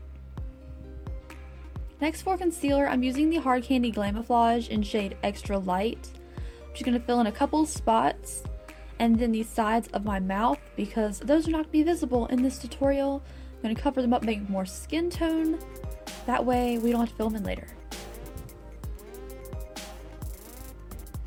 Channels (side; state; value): both; identical; correlation 1.00